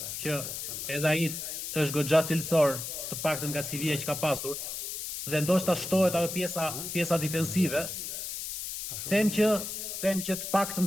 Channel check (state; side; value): noise; left; hiss, 6 dB below the sound